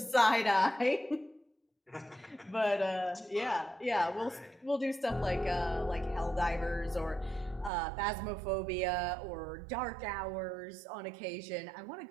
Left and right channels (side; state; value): left; drops out; at 7.7 s